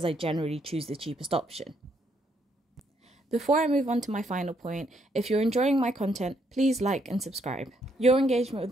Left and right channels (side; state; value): both; normal; correlation 0.73